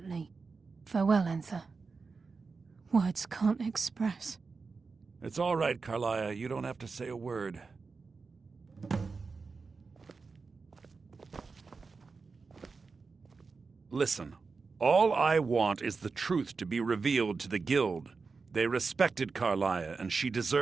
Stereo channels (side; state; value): left; quieter; 4.5 dB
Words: Farewell, Enthir. Words can't express. It's all right, Carlia. You don't have to say a word. Listen, all I want is the truth to be revealed to the Guild. They respected Carlia, and she